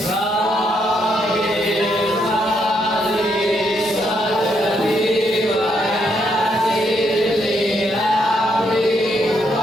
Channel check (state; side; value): normal; both; correlation 0.76